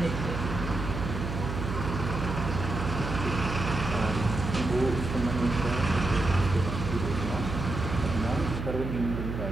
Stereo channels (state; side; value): noise; right; hum, 5 dB below the sound